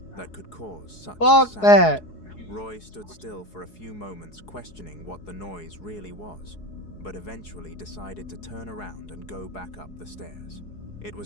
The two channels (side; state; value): right; late; 4.7 ms